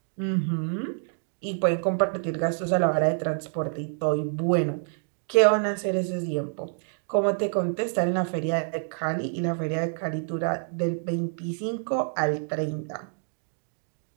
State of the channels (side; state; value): left; silent; digital silence